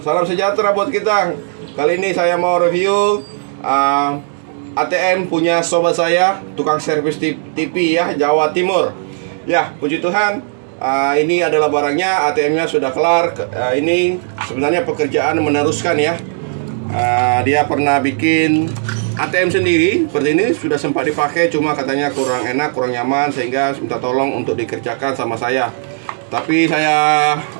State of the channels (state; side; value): silent; left; digital silence